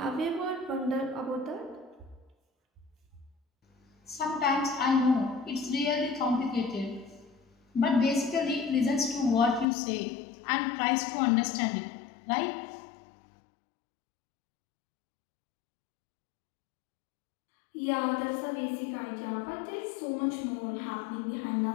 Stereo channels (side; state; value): right; drops out; at 9.7 s